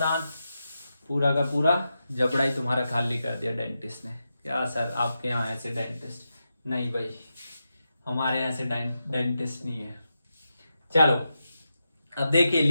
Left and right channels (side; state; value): both; inverted; correlation -0.89